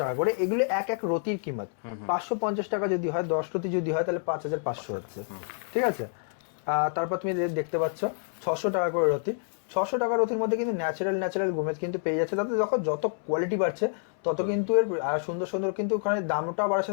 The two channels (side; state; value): right; silent; 59 dB below the other